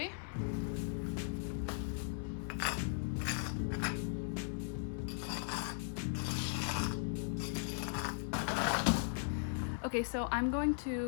Okay, so I'm going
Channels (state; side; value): silent; right; 52 dB below the other